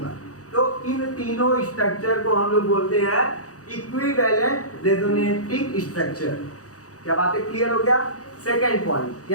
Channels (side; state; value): right; late; 0.66 ms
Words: तो इन तीनों स्ट्रक्चर को हम लोग बोलते हैं इक्विवेलेंट रेजोनेटिंग स्ट्रक्चर। क्या बातें क्लियर हो गया? सेकेंड पॉइंट